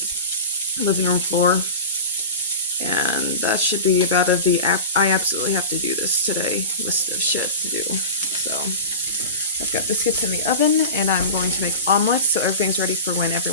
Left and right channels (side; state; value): both; inverted; correlation -0.30